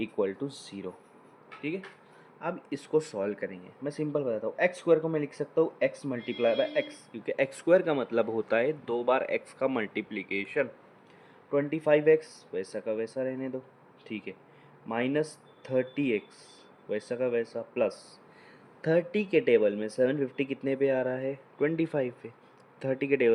to 0, ठीक है। अब इसको सॉल्व करेंगे, मैं सिंपल बताता हूँ। एक्स स्क्वायर को मैं लिख सकता हूँ एक्स मल्टीप्लाई बाय एक्स, क्योंकि एक्स स्क्वायर का मतलब होता है दो बार एक्स का मल्टीप्लीकेशन। 25x वैसा का वैसा रहने दो, ठीक है, -30x वैसा का वैसा, प्लस 30 के टेबल में 750 कितने पे आ रहा है, 25 पे। 30 के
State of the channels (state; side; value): identical; both; correlation 1.00